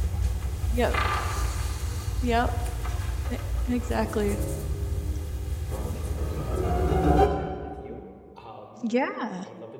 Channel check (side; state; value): both; identical; correlation 1.00